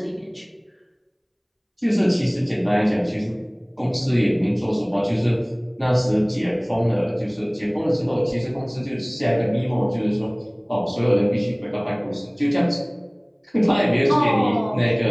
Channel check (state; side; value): identical; both; correlation 1.00